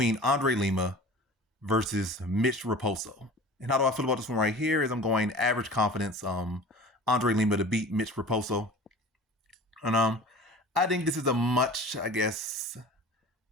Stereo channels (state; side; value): normal; both; correlation 0.40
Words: Andre Lima versus Mitch Raposo. And how do I feel about this one right here is I'm going average confidence, Andre Lima to beat Mitch Raposo. And I think this is a much, I guess,